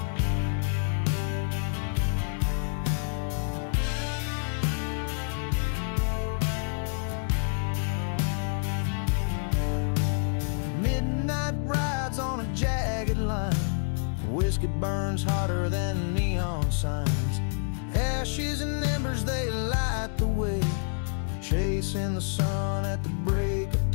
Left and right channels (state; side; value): silent; right; 59 dB below the other